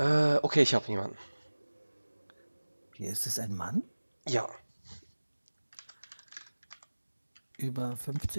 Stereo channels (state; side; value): inverted; both; correlation -1.00